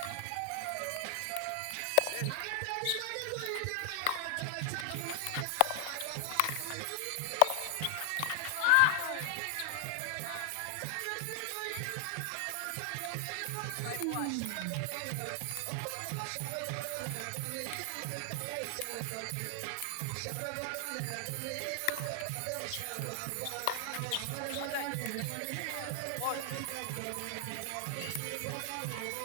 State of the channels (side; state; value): both; different; correlation 0.00